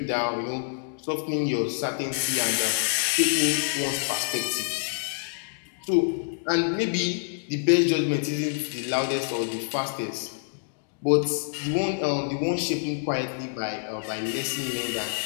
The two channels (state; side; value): silent; right; digital silence